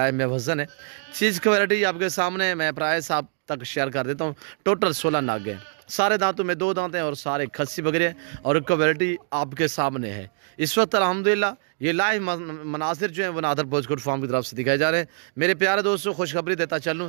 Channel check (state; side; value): silent; left; digital silence